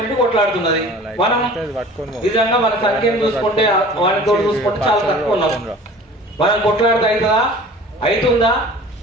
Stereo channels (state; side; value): normal; both; correlation 0.44